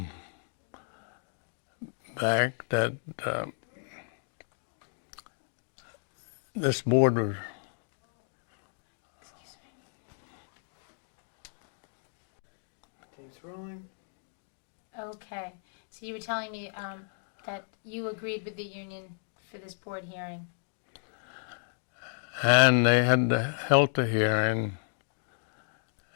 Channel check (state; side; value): silent; right; digital silence